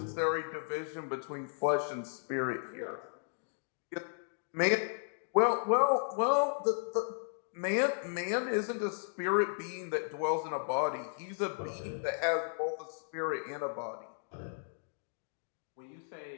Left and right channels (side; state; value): right; silent; digital silence